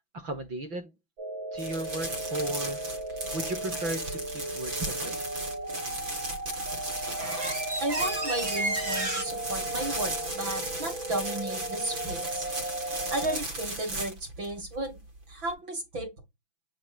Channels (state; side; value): late; left; 6.0 ms